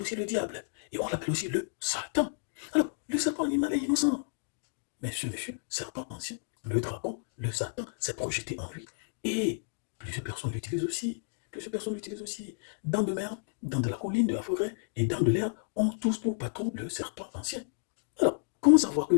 aussi le diable. Et on l'appelle aussi le Satan. Alors, le serpent animal est innocent. Mais ce monsieur, serpent ancien, le dragon, le Satan, s'est projeté en lui. Et plusieurs personnes l'utilisent aussi. Plusieurs personnes l'utilisent aussi. Dans de mer, dans de la colline, de la forêt et dans de l'air, on tous pour patron le serpent ancien. Alors, comment savoir que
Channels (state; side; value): silent; right; digital silence